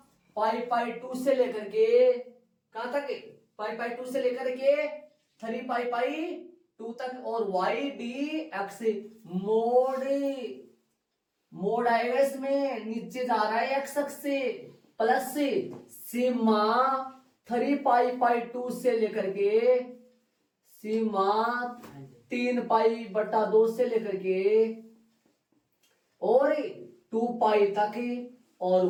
पाई 2 से लेकर के कहां तक है, पाई 2 से लेकर के 3 पाई 2 तक, और वाई डी एक्स मोड आएगा इसमें, नीचे जा रहा है एक्स अक्ष से, प्लस सीमा 3 पाई 2 से लेकर के सीमा 3 पाई बटा 2 से लेकर के और 2 पाई तक, और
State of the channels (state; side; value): identical; both; correlation 1.00